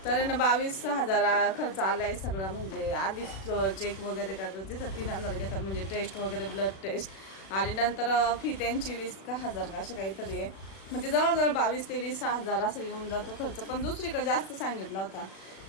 तर ना 22,000 खर्च आला आहे सगळं. म्हणजे आधी चेक वगैरे करतात तिथं 3,000 घेतात, म्हणजे टेस्ट वगैरे ब्लड टेस्ट. आणि नंतर फी त्यांची 20,000 का असं काहीतरी आहे. म्हणजे जवळजवळ 22,000 ते 20,000 असं येऊन जातो खर्च. पण दुसरीकडे जास्त सांगितला होता.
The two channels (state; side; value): late; right; 36 ms